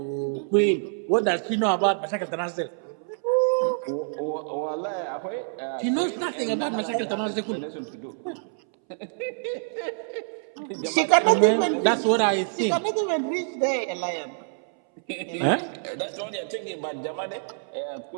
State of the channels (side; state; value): left; silent; 61 dB below the other